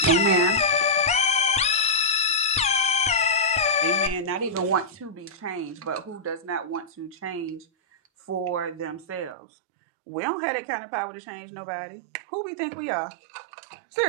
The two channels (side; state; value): left; drops out; at 9.3 s